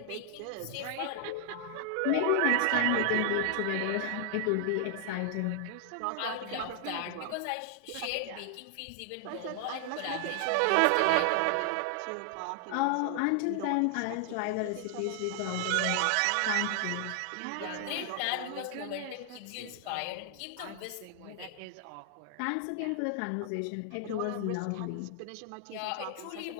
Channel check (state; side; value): different; both; correlation 0.00